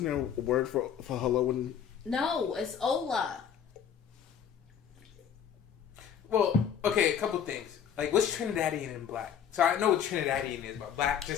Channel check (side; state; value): right; quieter; 8.4 dB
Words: there a word for hello? And No, it's hola. Well, okay, a couple things. Like, what's Trinidadian and black? So I know what Trinidadian is, but black,